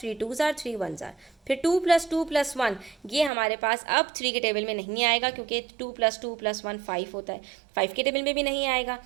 2 जार 3 1 जार। फिर 2 + 2 + 1, ये हमारे पास अब 3 के टेबल में नहीं आएगा, क्योंकि 2 + 2 + 1 5 होता है, 5 के टेबल में भी नहीं आएगा।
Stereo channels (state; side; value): drops out; left; at 3.3 s